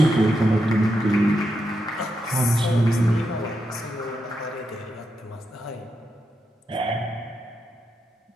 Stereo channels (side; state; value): both; normal; correlation 0.85